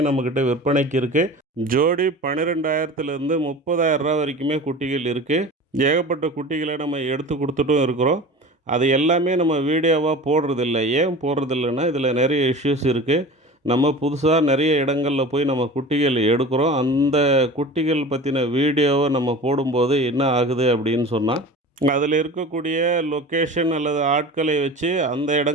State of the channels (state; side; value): normal; both; correlation 0.36